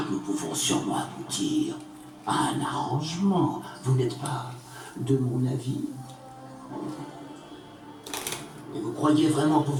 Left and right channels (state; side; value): identical; both; correlation 1.00